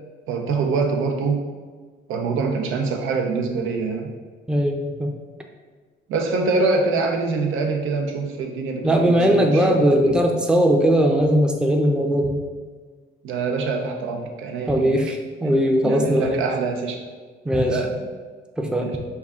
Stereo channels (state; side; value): normal; both; correlation 0.65